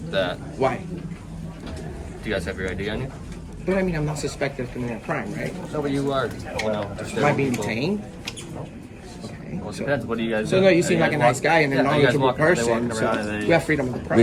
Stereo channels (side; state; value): both; identical; correlation 1.00